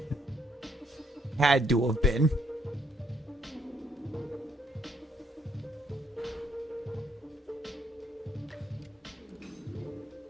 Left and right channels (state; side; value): normal; both; correlation 0.71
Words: Had to have been.